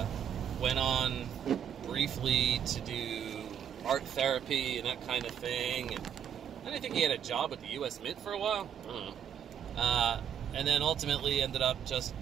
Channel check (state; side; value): quieter; left; 8.9 dB